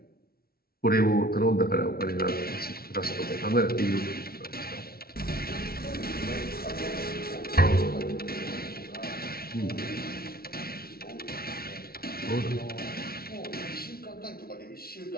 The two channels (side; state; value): right; late; 0.44 ms